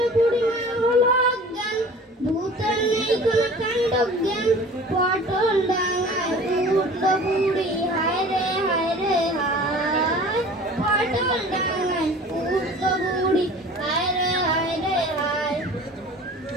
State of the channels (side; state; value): both; normal; correlation 0.43